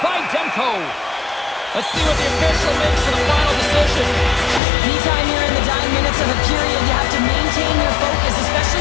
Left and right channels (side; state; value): right; drops out; at 4.6 s